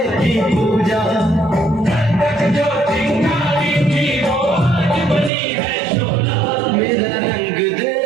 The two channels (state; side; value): drops out; left; at 5.3 s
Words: की पूजा, जो चिंगारी थी वो आज बनी है चोला. मेरा रंग दे,